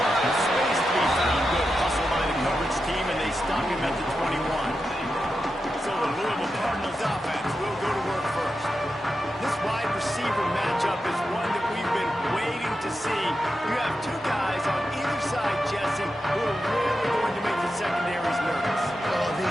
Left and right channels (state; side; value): normal; both; correlation 0.89